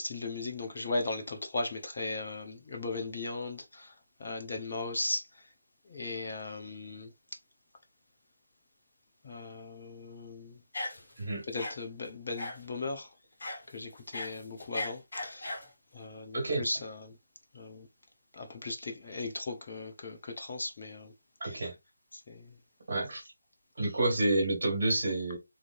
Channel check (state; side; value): inverted; both; correlation -0.80